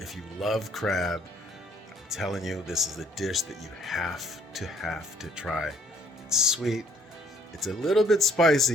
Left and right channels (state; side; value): normal; both; correlation 0.62